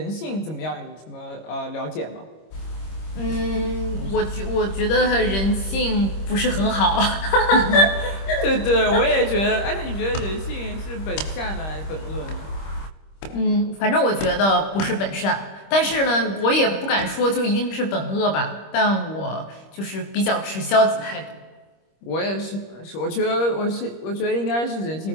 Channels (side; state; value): right; late; 26 ms